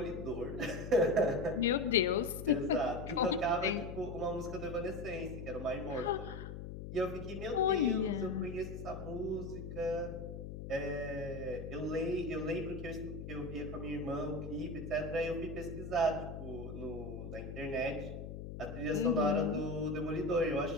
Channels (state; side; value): noise; left; hum, 8 dB below the sound